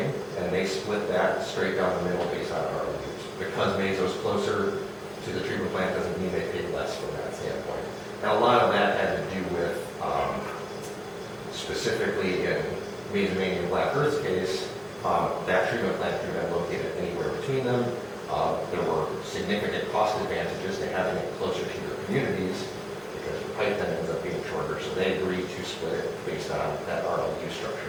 and they split that straight down the middle based on RLUs. Because Mazo's closer to the treatment plant doesn't mean they pay less from that standpoint. Now, a lot of that had to do with, specifically in Mazomania and Black Earth's case, that treatment plant could have been located anywhere between them. There were significant cost advantages to having it closer to your communities because the pipe then ends up being shorter. So they agreed to split it based on that RLU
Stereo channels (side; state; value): both; identical; correlation 1.00